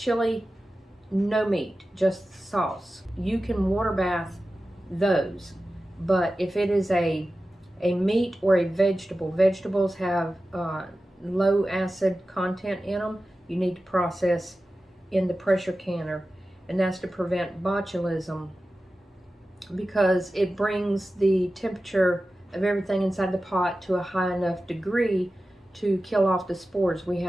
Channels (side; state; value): both; normal; correlation 0.94